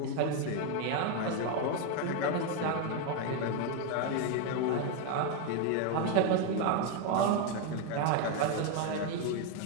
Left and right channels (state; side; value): different; both; correlation 0.02